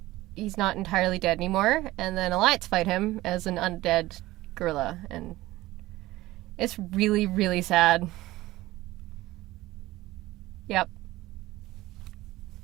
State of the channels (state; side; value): quieter; left; 17.6 dB